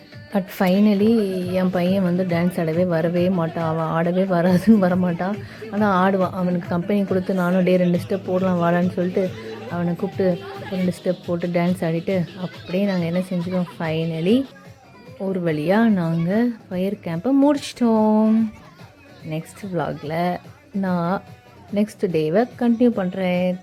பட் ஃபைனலி என் பையன் வந்து டான்ஸ் ஆடவே வரவே மாட்டான். அவன் ஆடவே வராதுன்னு வரமாட்டான். ஆனால் ஆடுவான். அவனுக்கு கம்பெனி கொடுத்து நானும் 2 ஸ்டெப் போடலாம் வாடான்னு சொல்லிட்டு அவனை கூப்பிட்டு 2 ஸ்டெப் போட்டு டான்ஸ் ஆடிட்டு அப்படியே நாங்கள் என்ன செஞ்சிட்டோம், ஃபைனலி ஒரு வழியாக நாங்கள் ஃபயர் கேம்பை முடிச்சிட்டோம். நெக்ஸ்ட் vlogல நான் நெக்ஸ்ட் டேவை கண்டினியூ பண்ணுறேன்.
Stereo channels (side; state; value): both; identical; correlation 1.00